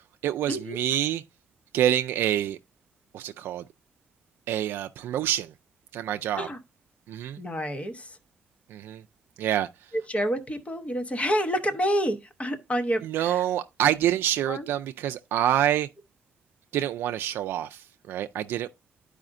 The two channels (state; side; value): quieter; left; 6.7 dB